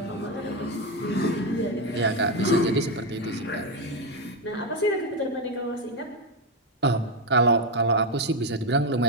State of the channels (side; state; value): both; normal; correlation 0.08